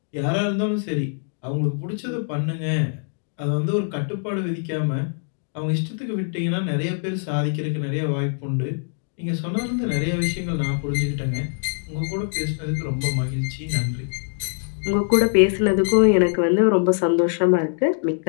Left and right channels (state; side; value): silent; right; 63 dB below the other